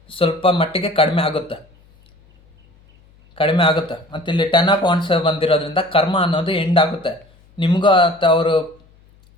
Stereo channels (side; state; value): left; noise; hum, 30 dB below the sound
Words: ಸ್ವಲ್ಪ ಮಟ್ಟಿಗೆ ಕಡಿಮೆ ಆಗುತ್ತೆ. ಮತ್ತು ಇಲ್ಲಿ 10 ಆಫ್ ವಾಂಡ್ಸ್ ಬಂದಿರೋದ್ರಿಂದ ಕರ್ಮ ಅನ್ನೋದು ಎಂಡ್ ಆಗುತ್ತೆ. ನಿಮಗೂ ಅಥವಾ ಅವರು